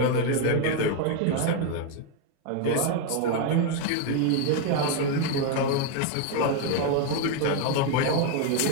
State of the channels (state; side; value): different; both; correlation 0.01